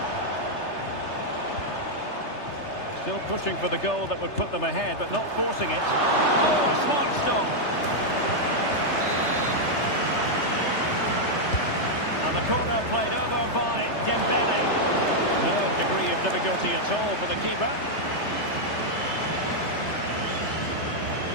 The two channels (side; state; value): right; late; 3.3 ms